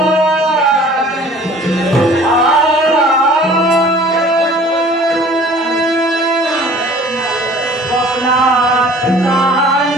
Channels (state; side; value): normal; both; correlation 0.49